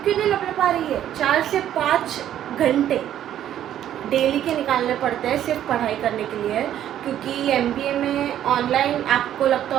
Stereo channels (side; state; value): left; quieter; 11.2 dB